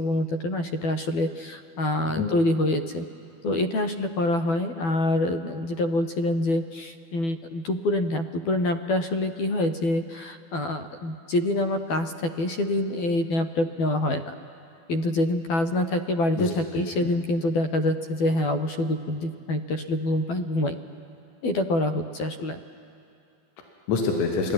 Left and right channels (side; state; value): right; late; 12 ms